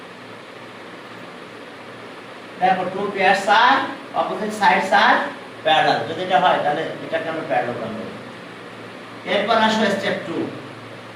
Therefore, two pairs are opposite sides are parallel. যদি এটা হয় তাহলে এটাকে আমরা parallelogram বলি। এরপর আসো স্টেপ 2।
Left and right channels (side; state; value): both; identical; correlation 1.00